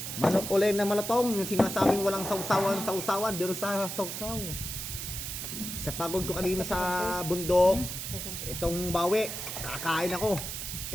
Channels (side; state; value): right; noise; hiss, 6 dB below the sound